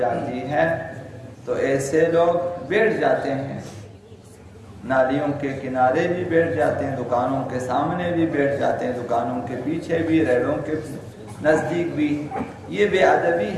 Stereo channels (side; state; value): both; identical; correlation 1.00